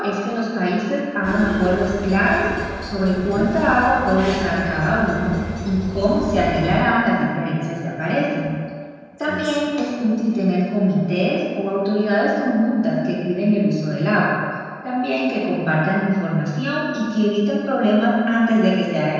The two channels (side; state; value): both; identical; correlation 1.00